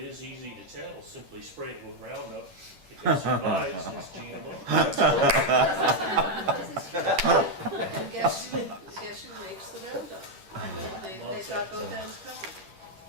easy to tell, simply spray it with Roundup. If it survives, it's GMO. And guess who makes the Roundup? They've got both ends covered.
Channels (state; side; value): late; left; 10 ms